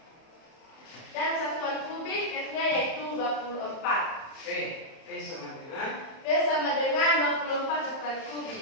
Dan satuan kubik F-nya yaitu 24. V sama dengan V sama dengan 24 satuan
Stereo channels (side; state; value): right; late; 31 ms